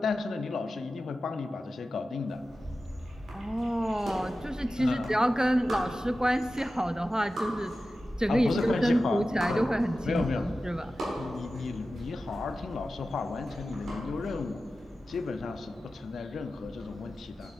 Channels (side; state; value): both; normal; correlation 0.94